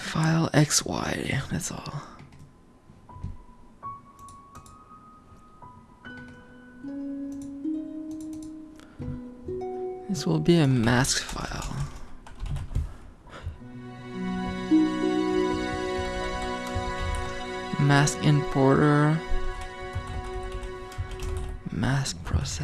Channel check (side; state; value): both; identical; correlation 1.00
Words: File XY, that's all. This will be a mask file. Mask importer. Mask